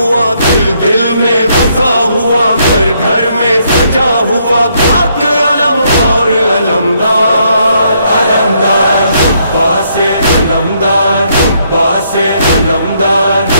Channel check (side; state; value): both; inverted; correlation -0.72